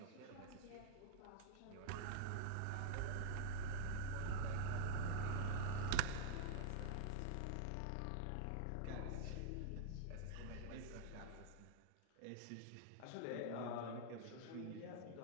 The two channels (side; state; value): both; different; correlation -0.01